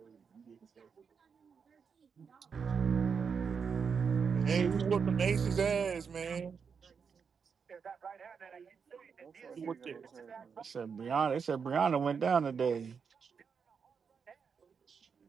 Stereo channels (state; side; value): quieter; left; 6.1 dB